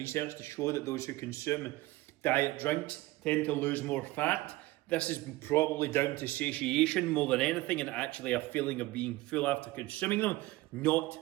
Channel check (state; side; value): quieter; left; 19.0 dB